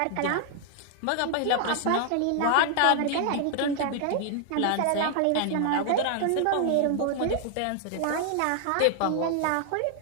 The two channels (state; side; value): different; both; correlation 0.00